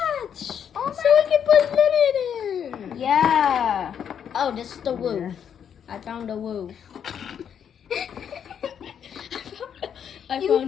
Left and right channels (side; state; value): right; quieter; 8.3 dB